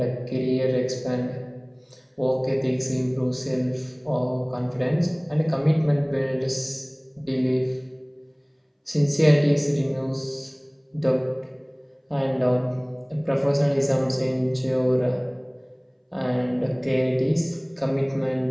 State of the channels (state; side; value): identical; both; correlation 1.00